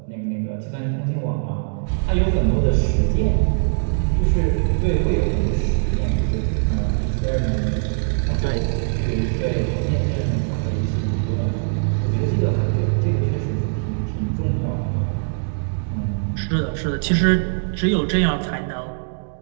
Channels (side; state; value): left; silent; digital silence